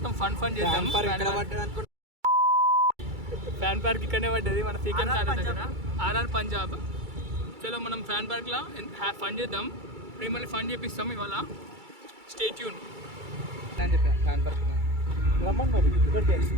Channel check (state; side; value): late; left; 2.3 ms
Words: ఫన్ చేద్దాం. ఫ్యాన్ పార్క్ ఇక్కడనే పడ్డది మన సీకెం కాలేజ్ దగ్గర ఆర్ఆర్ పంజాబ్. చలో మనం ఫ్యాన్ పార్క్ లా ఫన్ చేద్దాం. మిమ్మల్ని ఫన్ చేపిస్తాం ఇవాళ. స్టే ట్యూన్ అని చెప్పా. ఫ్యాన్ పార్క్